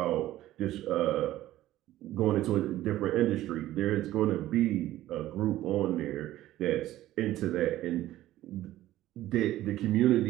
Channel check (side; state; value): left; quieter; 14.7 dB